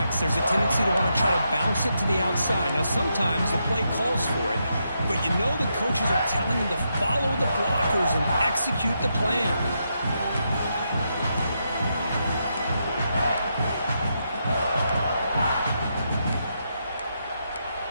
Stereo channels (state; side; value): inverted; both; correlation -0.82